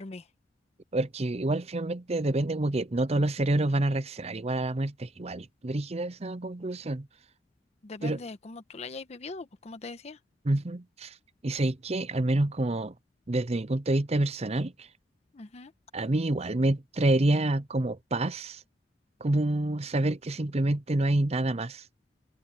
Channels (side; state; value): both; normal; correlation 0.76